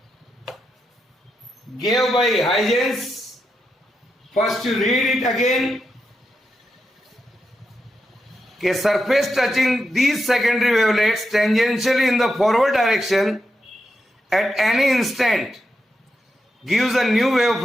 gave by Huygens. First you read it again. A surface touching these secondary wavelets tangentially in the forward direction at any instant gives a new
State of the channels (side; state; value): both; normal; correlation 0.86